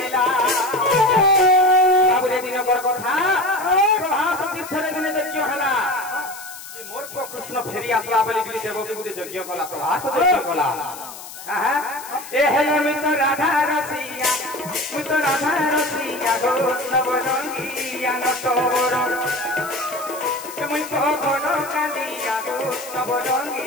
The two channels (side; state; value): left; noise; hiss, 14 dB below the sound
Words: বাবুরে দিনকর কথা প্রভাস তীর্থরে দিনে যজ্ঞ হলা যে মোর কৃষ্ণ ফেরি আসলা বলি গলি দেবকে গুলি যজ্ঞ কলা প্রভাস যজ্ঞ কলা এ হেলে মিত রাধা রসিয়া মিত রাধা রসিয়া গো নবরঙ্গিয়া নটবর মুই তো ঘন কালিয়া গো